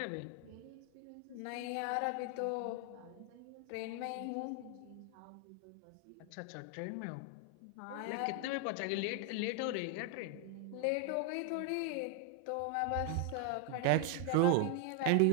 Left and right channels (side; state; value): both; different; correlation 0.00